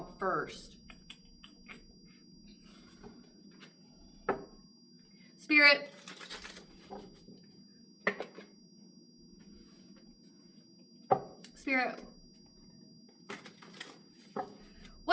first. Spirit. Spirit.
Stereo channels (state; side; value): identical; both; correlation 1.00